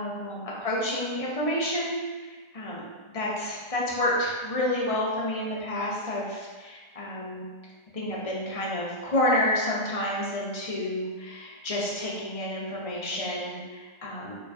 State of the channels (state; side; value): late; right; 1.3 ms